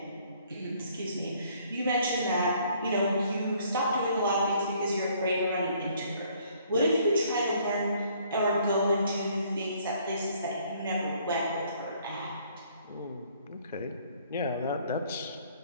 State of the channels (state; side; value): inverted; both; correlation -0.62